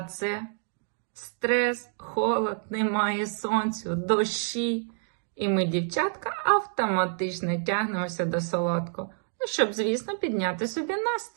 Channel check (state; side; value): silent; left; digital silence